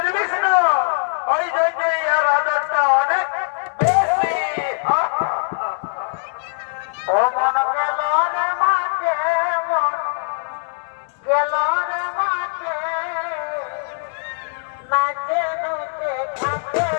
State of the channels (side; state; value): right; silent; 65 dB below the other